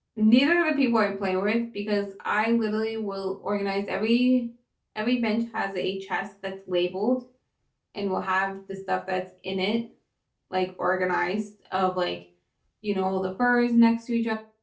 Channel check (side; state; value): both; identical; correlation 1.00